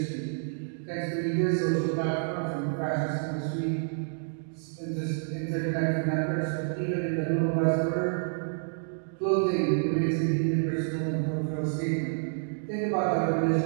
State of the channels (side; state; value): left; silent; digital silence